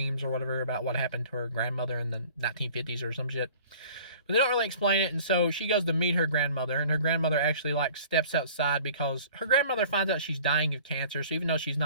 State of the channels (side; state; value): both; inverted; correlation -0.48